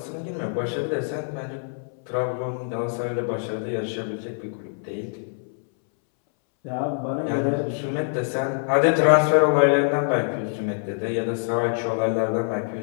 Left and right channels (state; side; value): silent; right; 62 dB below the other